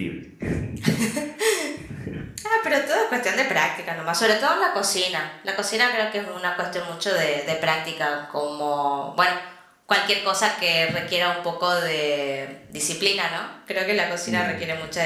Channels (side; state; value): both; identical; correlation 1.00